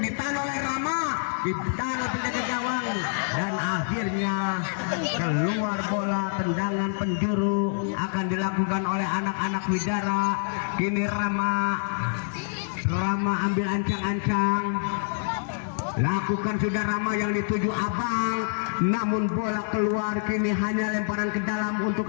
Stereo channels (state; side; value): silent; right; digital silence